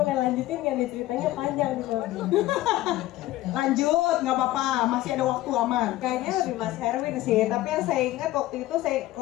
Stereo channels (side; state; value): right; quieter; 16.0 dB